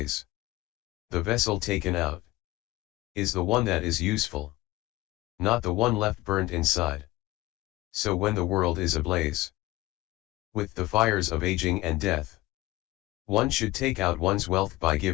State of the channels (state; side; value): quieter; right; 18.6 dB